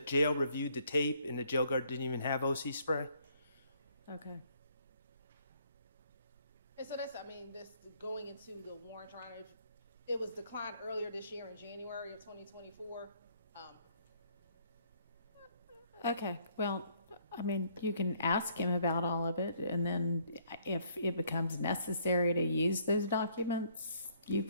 jail reviewed the tape, and the jail guard didn't even have OC spray. Okay. And so that's, this going into the warrant trial, it was declined earlier this year in January of 2024. Okay, well, you can ask him about all of it, and then if it becomes necessary to use those documents, you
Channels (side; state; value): both; inverted; correlation -0.65